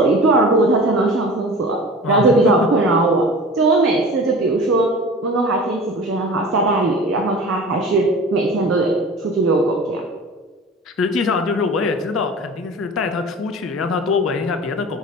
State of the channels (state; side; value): normal; both; correlation 0.38